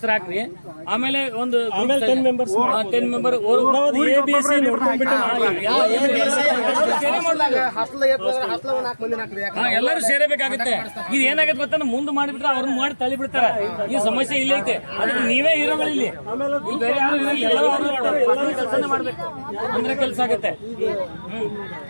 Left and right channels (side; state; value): both; inverted; correlation -1.00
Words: ಹಾಕ್ರಿ. ಆಮೇಲೆ ಒಂದು 10 ಮೆಂಬರ್ ಎಲ್ಲರೂ ಸೇರಬೇಕಾಗುತ್ತೆ. ಇದು ಏನಾಗುತ್ತೆ ಗೊತ್ತಾ, ಮುಂದೆ ಮಾಡಿಬಿಟ್ರೆ ಅವ್ರನ್ನ ಮಾಡಿ ತಳ್ಳಿ ಬಿಡ್ತಾರೆ. ಈ ಸಮಸ್ಯೆ ಇಲ್ಲ ಐತೆ. ಅದಕ್ಕೆ ನೀವೇ ಹೀರೋಗಳು ಇಲ್ಲಿ, ಬೇರೆ ಯಾರು ಎಲ್ಲರೂ ಕೆಲಸನೇ ಮಾಡ್ಬೇಕು ಅಂದ್ರೆ ಕೆಲಸ ಆಗುತ್ತೆ.